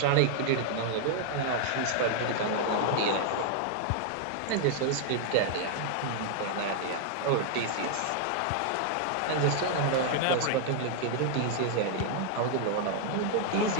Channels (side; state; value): both; different; correlation 0.00